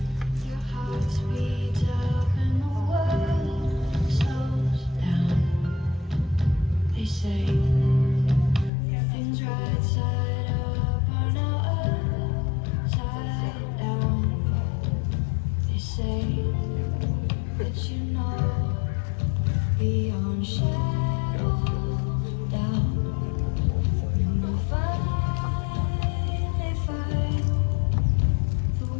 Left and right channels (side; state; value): right; drops out; at 8.7 s